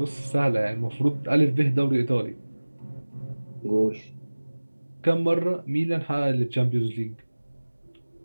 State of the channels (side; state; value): both; inverted; correlation -1.00